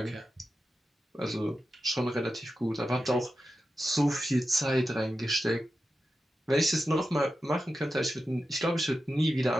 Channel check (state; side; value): normal; both; correlation 0.91